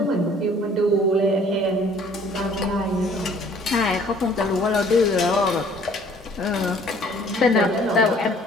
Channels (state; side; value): normal; both; correlation 0.56